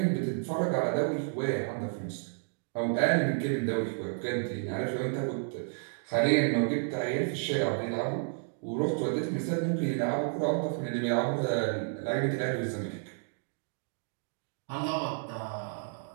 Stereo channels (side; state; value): left; silent; 57 dB below the other